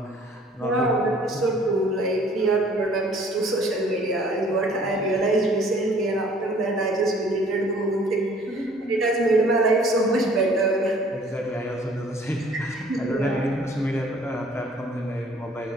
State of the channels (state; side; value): normal; both; correlation 0.55